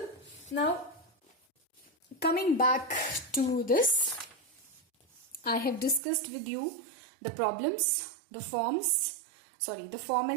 Now, coming back to this, I have discussed with you the problems, the form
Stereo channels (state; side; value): drops out; left; at 6.0 s